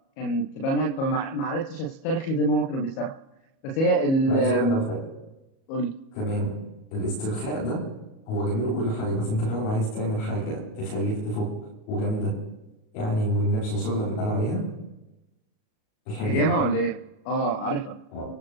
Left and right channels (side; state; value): right; late; 37 ms